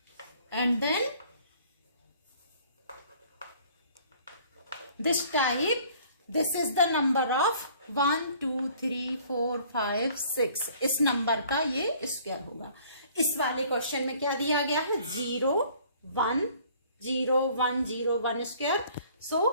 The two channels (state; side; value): inverted; both; correlation -0.55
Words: and then this type, this is the number of 1 2 3 4 5 6, इस number का ये square होगा। इस वाले question में क्या दिया गया है? 0 1 0 1 0 1 square. So